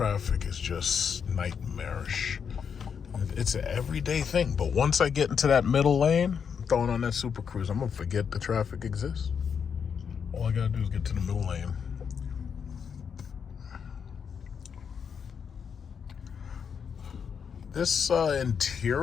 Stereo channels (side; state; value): right; quieter; 6.9 dB